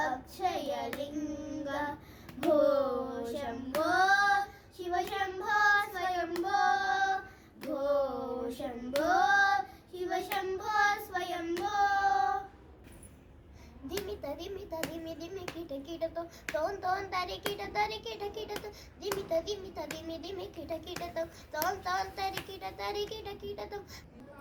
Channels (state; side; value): identical; both; correlation 1.00